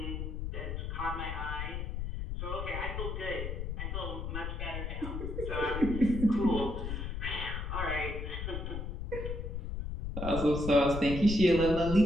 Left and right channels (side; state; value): left; noise; rumble, 4 dB below the sound